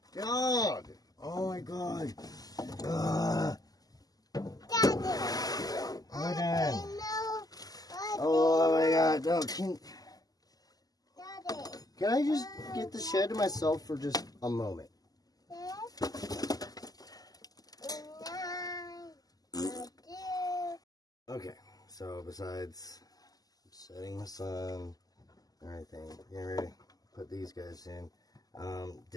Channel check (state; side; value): late; right; 0.18 ms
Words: Dog. Oh my god. Daddy! Odin. No. Oh my god. No, Daddy. can I just get the shed to myself for just a moment? 6, 9, 2. Okay, so besides setting the sun, everything, getting ready to put these guys in,